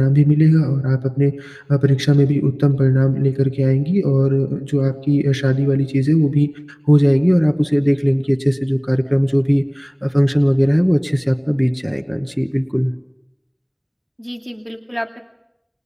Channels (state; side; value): identical; both; correlation 1.00